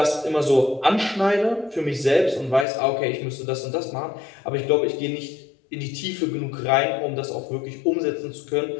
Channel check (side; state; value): right; drops out; at 2.7 s